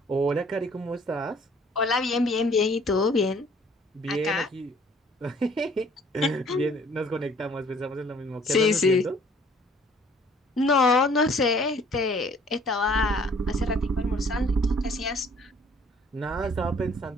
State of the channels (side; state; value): both; normal; correlation 0.57